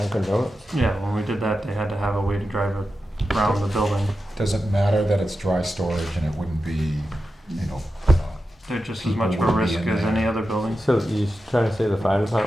Donuts? Yeah, when we did that, they had to have a way to drive around the building. Does it matter that it's dry storage and it wouldn't be, you know, They're just as people much of a wouldn't be risk in as there? any other building. So you're trying to say the fire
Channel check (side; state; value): both; normal; correlation 0.91